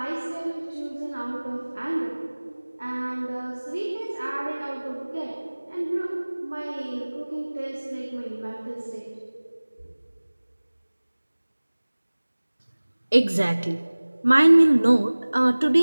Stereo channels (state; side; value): inverted; both; correlation -1.00